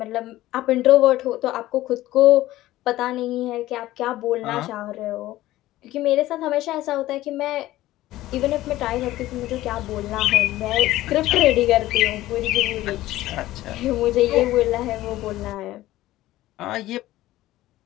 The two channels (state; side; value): quieter; right; 15.9 dB